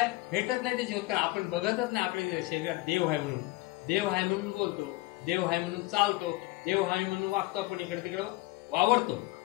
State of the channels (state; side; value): quieter; right; 20.7 dB